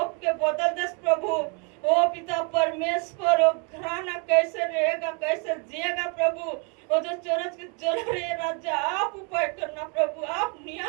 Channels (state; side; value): quieter; left; 33.9 dB